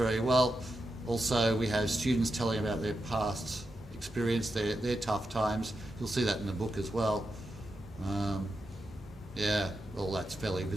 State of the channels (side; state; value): both; normal; correlation 0.88